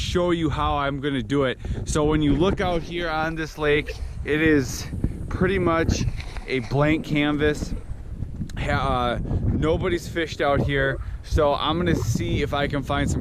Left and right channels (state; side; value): identical; both; correlation 1.00